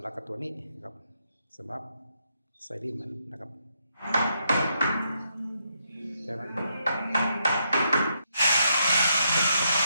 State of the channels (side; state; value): both; inverted; correlation -0.79